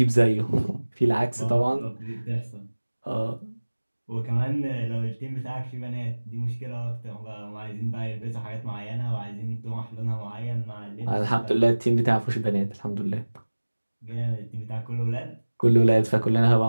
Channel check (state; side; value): inverted; both; correlation -1.00